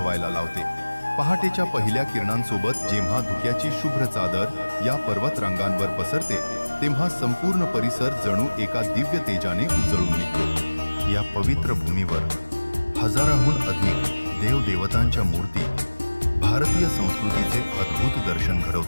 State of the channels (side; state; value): both; inverted; correlation -1.00